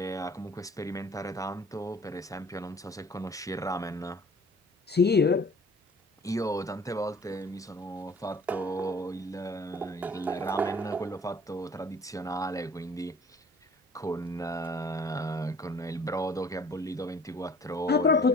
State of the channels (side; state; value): both; normal; correlation 0.51